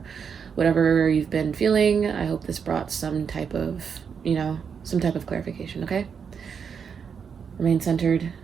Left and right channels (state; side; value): quieter; left; 6.6 dB